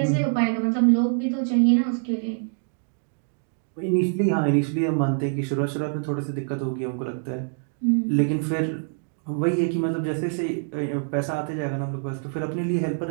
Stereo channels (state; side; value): silent; left; digital silence